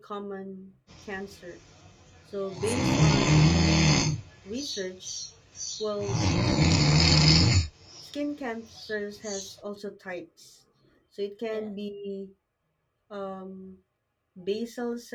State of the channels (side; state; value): both; identical; correlation 1.00